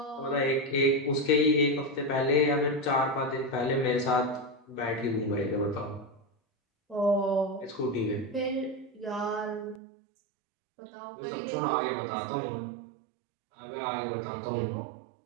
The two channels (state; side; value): drops out; left; at 9.8 s